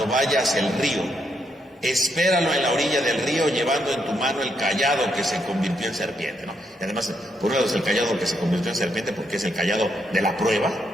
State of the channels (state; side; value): normal; both; correlation 0.77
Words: vaya hacia el río. Espéralo en la orilla del río llevando en tu mano el callado que se convirtió en serpiente, ¿no? Y además, por un lado es el callado que se convirtió en serpiente porque es el callado de la prueba,